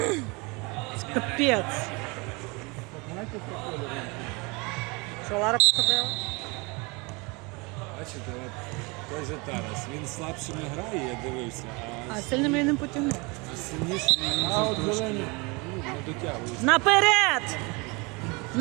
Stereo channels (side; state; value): left; quieter; 27.8 dB